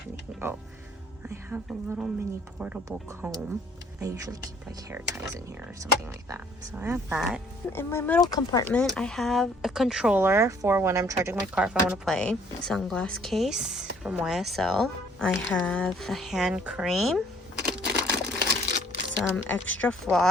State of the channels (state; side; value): normal; both; correlation 0.60